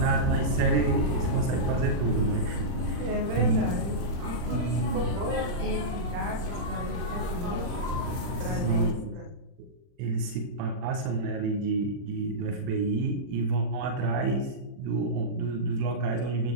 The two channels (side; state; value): left; late; 40 ms